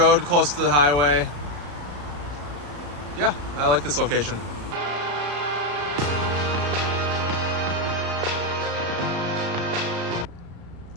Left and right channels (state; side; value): late; left; 34 ms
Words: close to the highway. Yeah, I like this location.